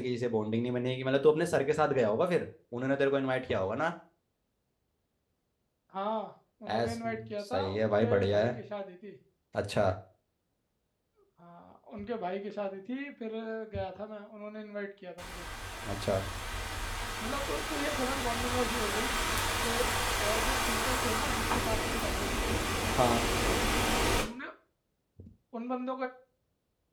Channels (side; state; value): both; identical; correlation 1.00